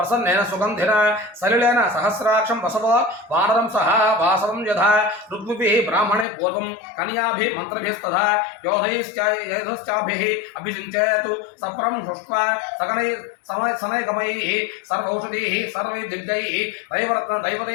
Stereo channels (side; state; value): right; drops out; at 6.2 s